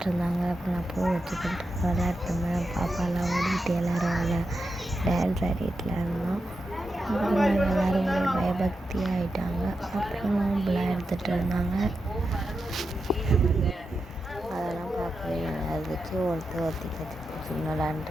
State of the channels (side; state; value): both; normal; correlation 0.88